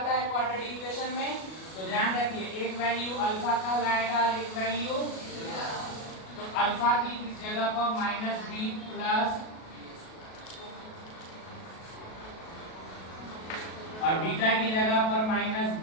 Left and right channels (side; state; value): right; late; 37 ms